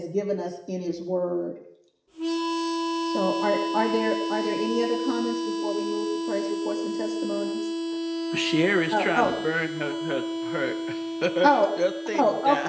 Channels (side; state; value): both; identical; correlation 1.00